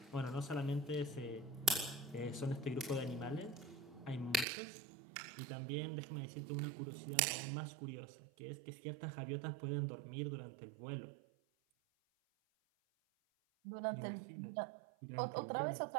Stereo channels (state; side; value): drops out; left; at 4.5 s